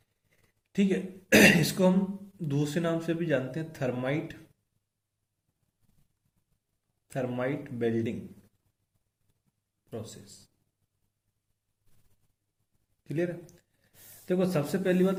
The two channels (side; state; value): both; identical; correlation 1.00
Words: ठीक है। इसको हम दूसरे नाम से भी जानते हैं, thermite, thermite welding process. Clear है? देखो, सबसे पहली